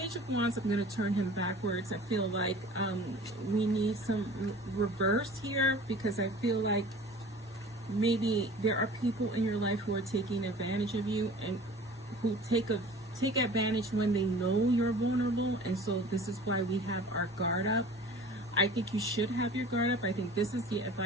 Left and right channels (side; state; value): both; normal; correlation 0.44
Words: of Wands, I'm going to turn him backwards. I feel like we need some reverse here, because I feel like maybe there are people in your life who are taking advantage of you and who take advantage when they know you're vulnerable, and so this is why we have our guard up. I think you should have your guard up. I think this is the